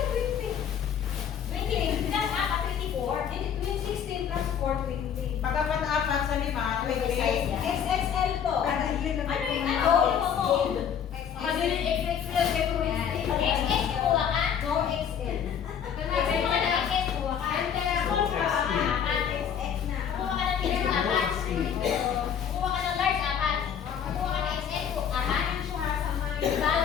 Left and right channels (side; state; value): right; quieter; 8.2 dB